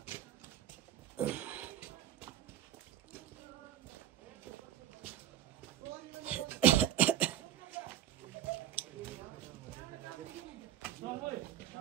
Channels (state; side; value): quieter; left; 11.9 dB